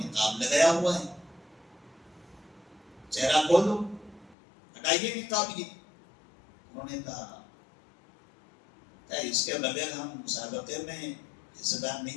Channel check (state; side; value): drops out; right; at 4.4 s